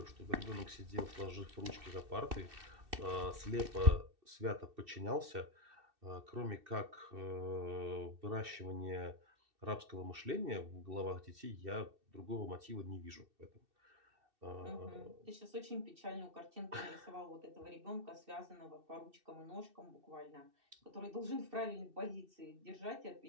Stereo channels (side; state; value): left; late; 2.6 ms